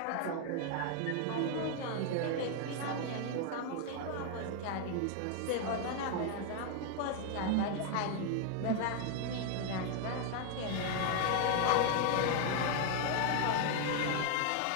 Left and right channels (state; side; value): different; both; correlation 0.00